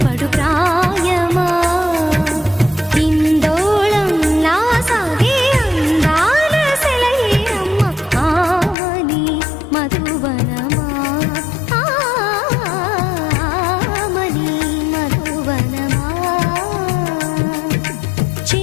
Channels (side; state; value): right; drops out; at 8.8 s